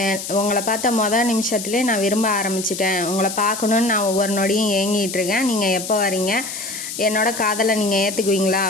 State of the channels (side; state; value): left; noise; hiss, 8 dB below the sound